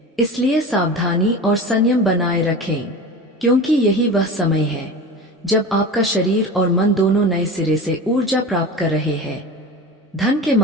इसलिए सावधानी और संयम बनाए रखें, क्योंकि यही वह समय है जब आपका शरीर और मन दोनों नए सिरे से ऊर्जा प्राप्त कर रहे हैं। धन के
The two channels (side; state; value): both; normal; correlation 0.31